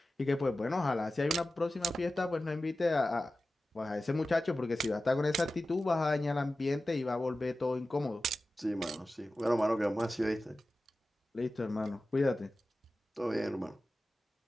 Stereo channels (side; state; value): both; normal; correlation 0.95